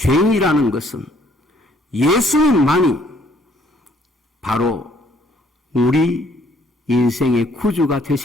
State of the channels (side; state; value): both; normal; correlation 0.64